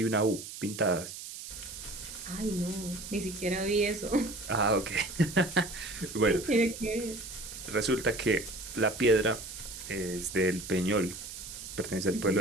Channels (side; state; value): right; noise; hiss, 11 dB below the sound